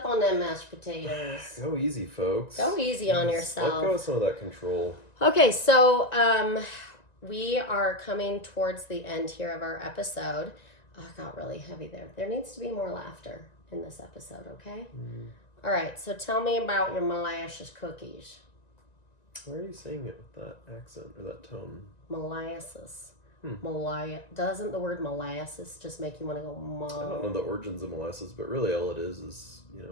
on them mashed potatoes. Go easy, folks. Go easy on yourself. Let go of some of that control. Okay, so we are coming towards the end here of our episode. Oh, it got really heavy there. There needs to be more laughter in this episode, okay? Mm. All right, so tell me about your molasses cookies. Why are you saying it with that accent or that tone? Molasses. Doesn't the word molasses just make you want to go I don't know the origins of molasses, but really all it is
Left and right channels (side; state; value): right; late; 1.9 ms